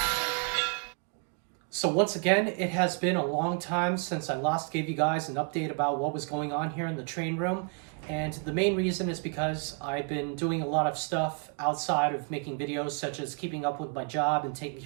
So once again, it has been a long time since I last gave you guys an update about what was going on here in the train room, and the main reason is because I've been doing a lot of stuff outside of making videos, such as keeping up with my job and taking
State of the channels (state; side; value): quieter; left; 39.1 dB